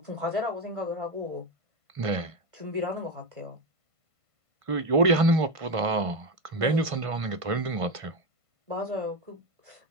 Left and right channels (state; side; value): late; left; 1.5 ms